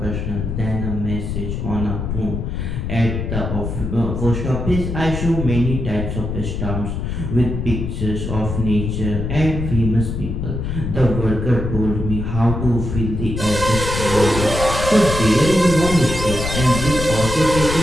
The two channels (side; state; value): left; noise; rumble, 3 dB below the sound